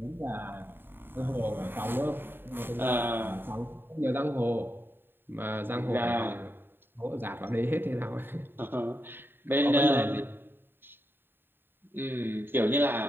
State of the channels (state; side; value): late; left; 0.099 ms